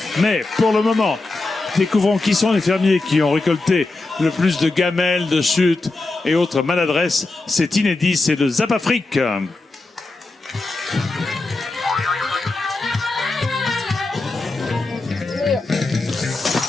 Mais pour le moment, découvrons qui sont les fermiers qui ont récolté le plus de gamelles, de chutes et autres maladresses. C'est inédit, c'est le Zap Afrique.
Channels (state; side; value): quieter; right; 3.2 dB